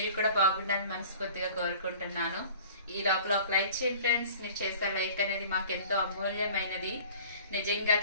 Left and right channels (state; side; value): inverted; both; correlation -0.45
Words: కూడా బాగుండాలని మనస్ఫూర్తిగా కోరుకుంటున్నాను. ఈ లోపల ఒక లైక్ చేయండి ఫ్రెండ్స్. మీరు చేసే లైక్ అనేది మాకు ఎంతో అమూల్యమైనది, నిజంగా